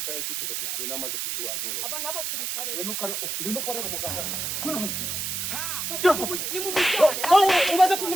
cyuke gashishwe n'amazi ashushe wanturo aba n'abasirikare we no korera umuganda ni mu mujyane umaze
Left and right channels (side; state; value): right; noise; hiss, 2 dB below the sound